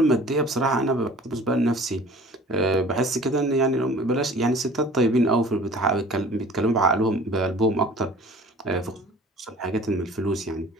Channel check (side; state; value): both; normal; correlation 0.46